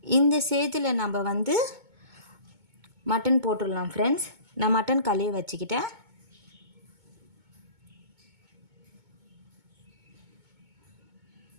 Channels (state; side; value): late; left; 2.2 ms